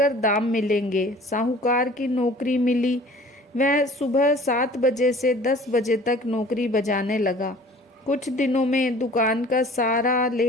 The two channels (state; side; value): normal; both; correlation 0.48